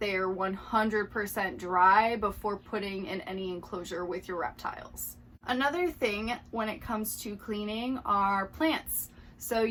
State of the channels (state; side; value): identical; both; correlation 1.00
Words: are 100% dry before putting in any enclosure with your reptiles. Another thing when it comes to cleaning are plants. So